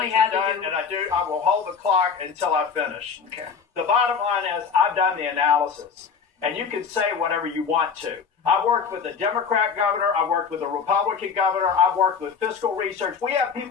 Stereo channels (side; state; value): right; quieter; 6.1 dB